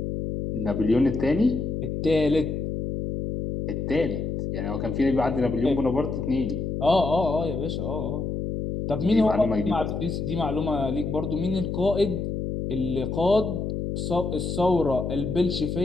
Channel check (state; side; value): noise; left; hum, 3 dB below the sound